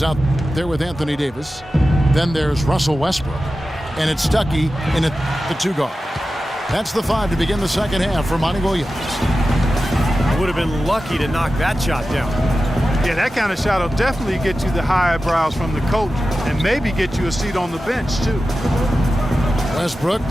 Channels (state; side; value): normal; both; correlation 0.93